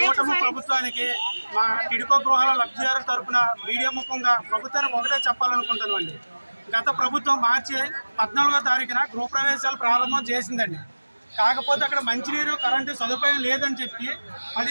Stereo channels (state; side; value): inverted; both; correlation -1.00